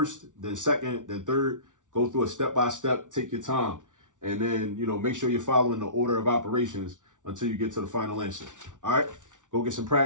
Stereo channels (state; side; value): late; left; 0.87 ms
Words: then second, then third. Go through it step by step. Take your time. And then, make sure you're following the order of operations until you get to the final answer. All right, go get some